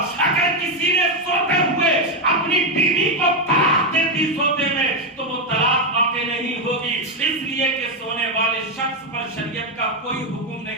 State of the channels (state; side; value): normal; both; correlation 0.06